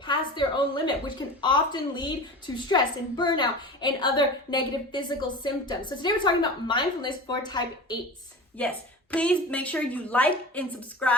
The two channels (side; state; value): both; normal; correlation 0.33